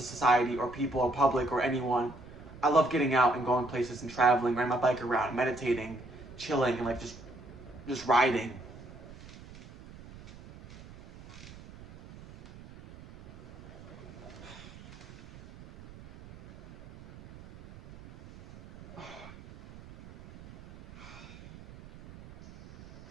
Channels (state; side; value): noise; right; rumble, 18 dB below the sound